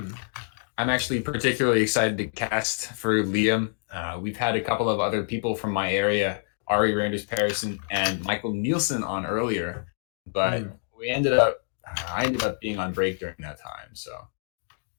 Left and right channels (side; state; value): right; silent; digital silence